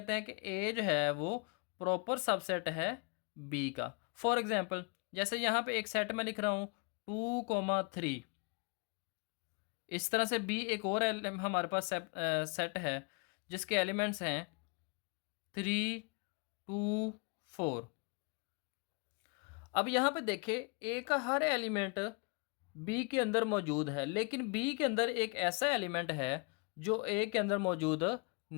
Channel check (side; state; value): right; quieter; 33.2 dB